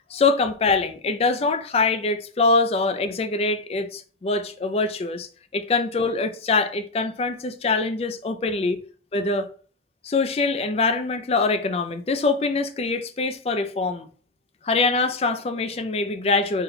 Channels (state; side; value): quieter; right; 3.3 dB